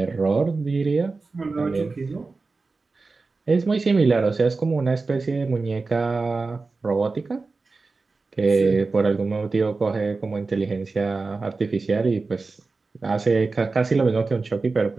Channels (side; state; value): left; quieter; 3.9 dB